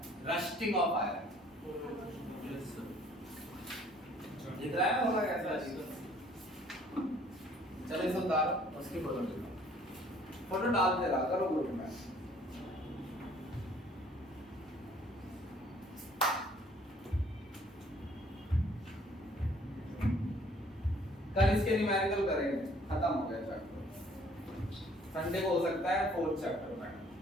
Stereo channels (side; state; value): both; normal; correlation 0.58